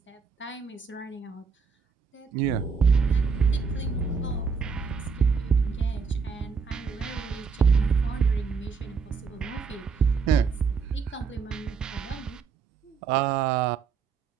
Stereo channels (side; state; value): left; quieter; 5.5 dB